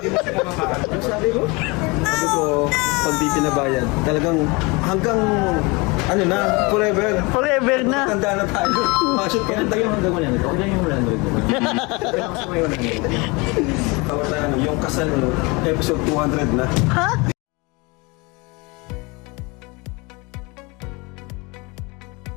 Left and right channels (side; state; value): right; quieter; 26.8 dB